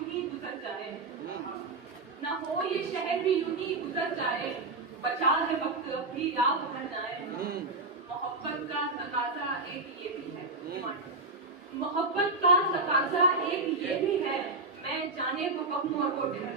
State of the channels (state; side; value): quieter; left; 3.4 dB